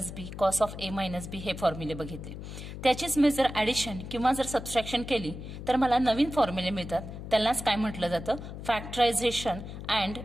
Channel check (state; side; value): noise; left; hum, 10 dB below the sound